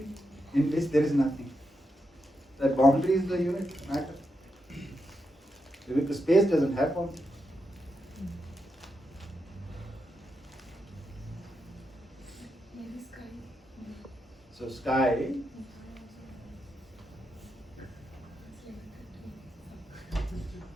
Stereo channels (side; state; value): both; normal; correlation 0.85